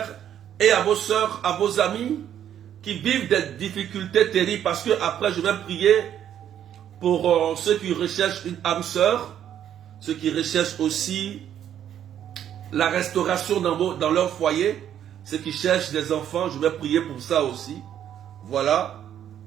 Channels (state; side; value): quieter; left; 10.1 dB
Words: et à vos sœurs, à vos amis qui vivent des difficultés terribles. Parce que après, je vais prier pour ceux qui recherchent une âme sœur, ceux qui recherchent aussi la restauration dans leur foyer, ceux qui cherchent des enfants, je vais prier pour ça aussi. Voilà.